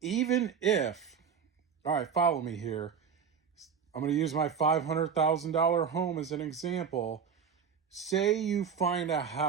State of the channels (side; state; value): left; quieter; 6.9 dB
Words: Even if, all right, follow me here. I'm going to use my $500,000 home as an example. Say you find a